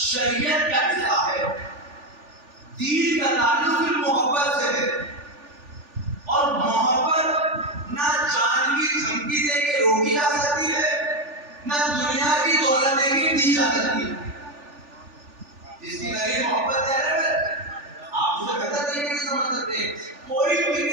کا حصہ ہے۔ دین کا تعلق محبت سے ہے، اور محبت نہ جان کی دھمکی دے کے روکی جا سکتی ہے، نہ دنیا کی دولت دے کے دی جا سکتی ہے۔ جس کی نئی محبت ہے آپ اسے بہتر طریقے سے سمجھ سکتے ہیں۔ کوئی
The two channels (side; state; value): left; late; 3.4 ms